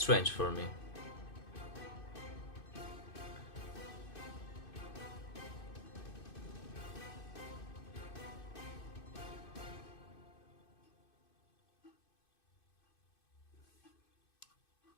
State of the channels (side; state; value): right; late; 2.6 ms